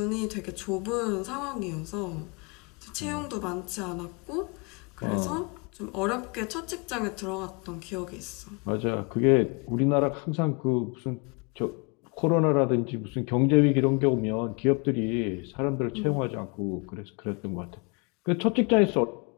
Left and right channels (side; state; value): right; quieter; 31.7 dB